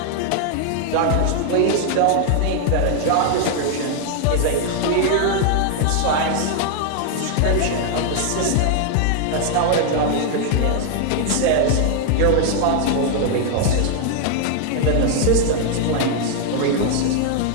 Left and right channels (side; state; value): both; different; correlation 0.00